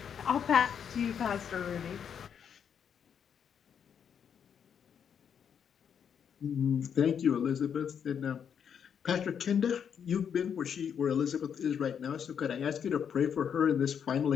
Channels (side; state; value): right; quieter; 7.8 dB